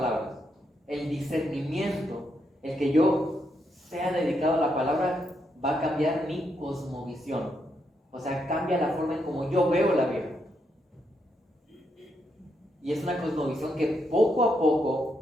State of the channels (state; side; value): normal; both; correlation 0.79